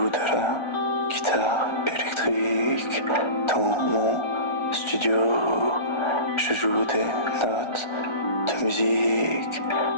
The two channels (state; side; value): late; right; 1.4 ms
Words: de la guitare électrique. Dans mon studio, je joue des notes de musique.